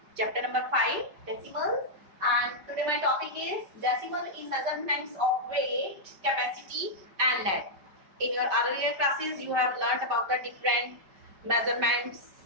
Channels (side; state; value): left; late; 5.1 ms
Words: Chapter number 5 decimals, and today my topic is decimal in measurements of weight, capacity and length. In your earlier classes you have learnt about the different measurements